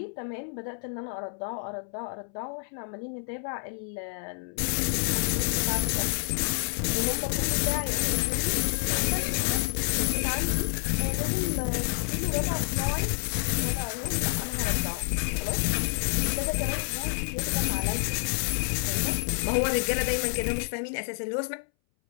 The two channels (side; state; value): right; silent; 59 dB below the other